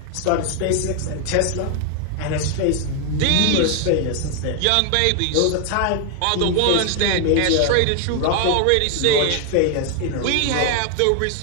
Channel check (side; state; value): both; different; correlation 0.00